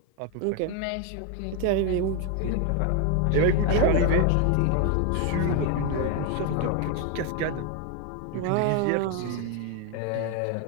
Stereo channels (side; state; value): both; different; correlation 0.01